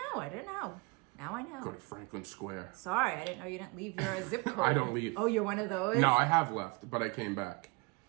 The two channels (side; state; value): left; quieter; 27.6 dB